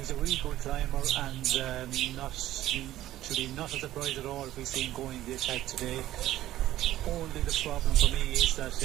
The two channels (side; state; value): left; quieter; 14.2 dB